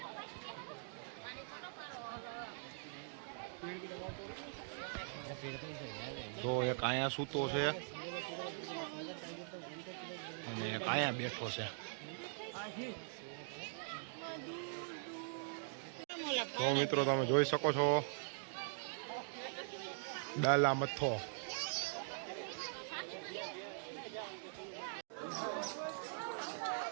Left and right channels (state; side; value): silent; left; digital silence